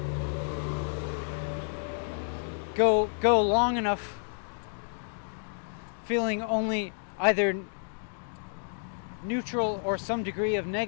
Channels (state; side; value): silent; right; digital silence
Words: go long enough feeling only either neutral or some degree of